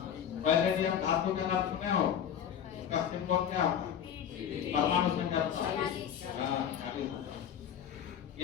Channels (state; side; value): quieter; right; 8.9 dB